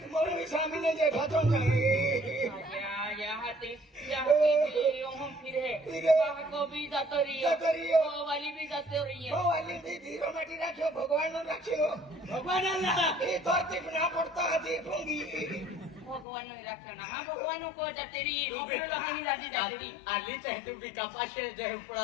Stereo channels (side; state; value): right; drops out; at 16.2 s